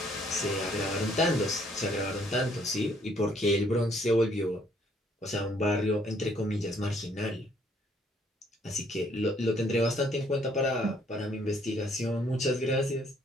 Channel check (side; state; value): both; normal; correlation 0.65